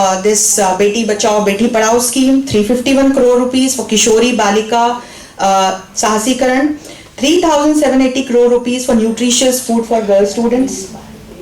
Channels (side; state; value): both; identical; correlation 1.00